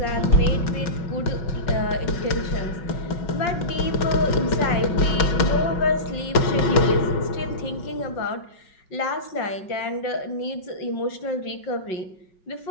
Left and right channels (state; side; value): late; right; 5.4 ms